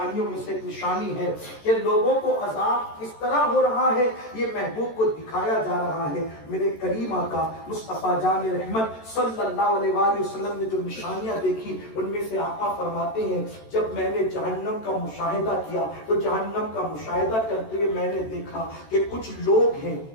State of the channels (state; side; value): late; right; 13 ms